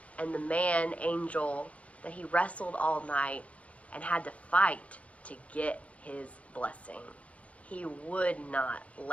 and the man angel that he wrestled all night and had to fight to get his blessing. He would not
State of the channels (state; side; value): late; right; 0.065 ms